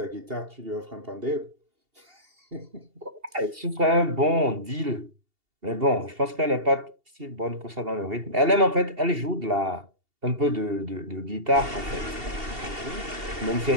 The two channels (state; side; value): late; left; 2.7 ms